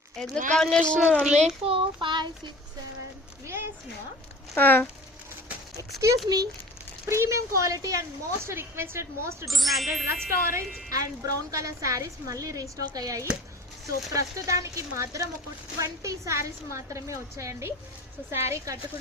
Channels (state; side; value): normal; both; correlation 0.41